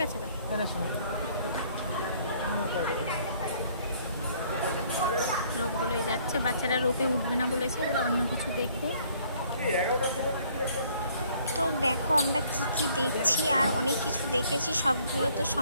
কাছে রোপগুলোই যাচ্ছে। বাচ্চারা রোপে উঠবে না বলেছে, ওরা অন্য কিছু দেখবে। তো দেখো আমরা কি কি দেখছি, আর অনেক কিছু দেখেছি, সবগুলো তো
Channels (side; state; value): both; inverted; correlation -0.61